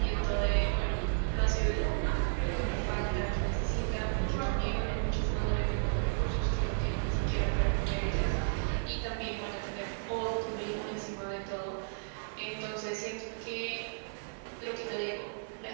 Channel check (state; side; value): silent; left; digital silence